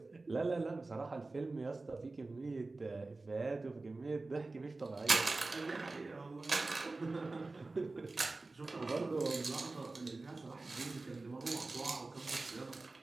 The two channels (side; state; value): left; quieter; 3.4 dB